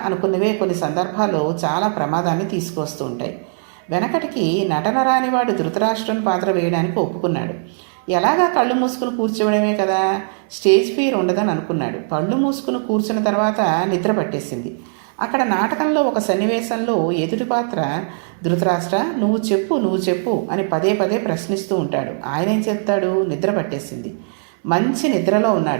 అనుకున్నవే కొన్ని సందర్భాల్లో చాలా ప్రమాదాన్ని తీసుకొస్తూ ఉంటాయి. వెనకటికి నటన రానివాడు ధృతరాష్ట్రుని పాత్ర వేయడానికి ఒప్పుకున్నాడు. ఎలాగా కళ్ళు మూసుకుని కూర్చోవడమే కదా, స్టేజ్ ఫియర్ ఉండదని అనుకున్నాడు. కళ్ళు మూసుకుని కూర్చున్న తర్వాత నిద్ర పట్టేసింది. అక్కడ నాటకంలో ఒక సన్నివేశంలో ఎదుటి పాత్ర ధృతరాష్ట్ర నువ్వు చెప్పు అని పదే పదే ప్రశ్నిస్తూ ఉంటాడు. ఆయన ఏం చెప్తాడు? నిద్ర పట్టేసింది, మంచి నిద్రలో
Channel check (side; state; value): left; silent; digital silence